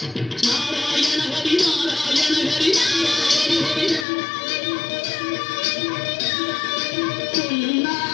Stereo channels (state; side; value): drops out; right; at 4.0 s